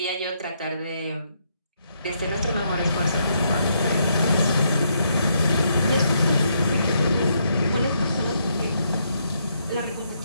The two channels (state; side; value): inverted; both; correlation -0.75